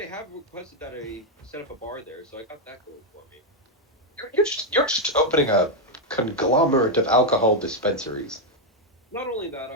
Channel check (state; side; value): normal; both; correlation 0.01